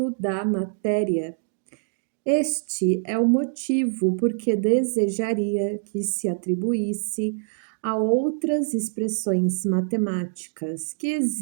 da matéria. Este é o motivo por que desejaria que se atribuísse a outras expressões matemáticas que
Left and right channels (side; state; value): left; silent; digital silence